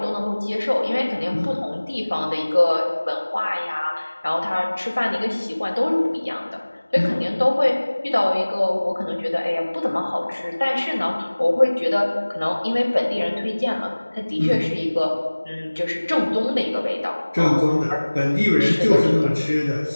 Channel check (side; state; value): both; inverted; correlation -1.00